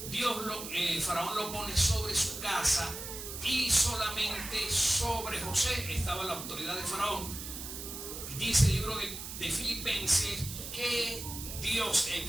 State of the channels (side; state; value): right; noise; hiss, 8 dB below the sound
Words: faraón lo pone sobre su casa, y solamente sobre José estaba la autoridad de faraón. Dice el libro de Filipenses que Dios